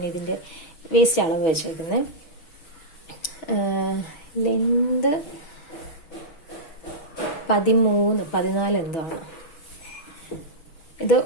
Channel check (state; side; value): late; right; 6.2 ms